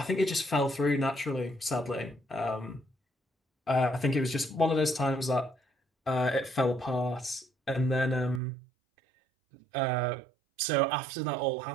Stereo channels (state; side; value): drops out; left; at 8.4 s